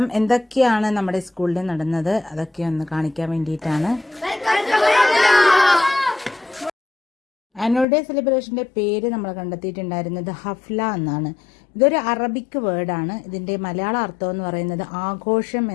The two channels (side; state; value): right; drops out; at 7.9 s